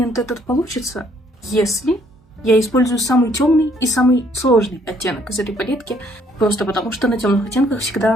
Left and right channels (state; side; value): normal; both; correlation 0.65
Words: этот получится, если я использую самый темный и самый сложный оттенок из этой палетки, просто потому что на темных оттенках